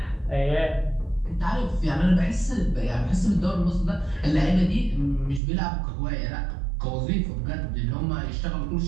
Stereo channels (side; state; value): left; drops out; at 5.4 s